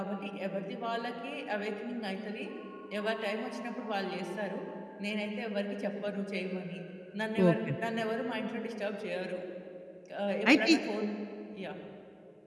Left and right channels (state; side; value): identical; both; correlation 1.00